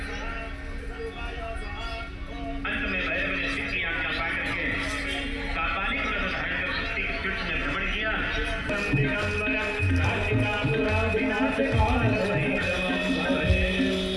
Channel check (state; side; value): identical; both; correlation 1.00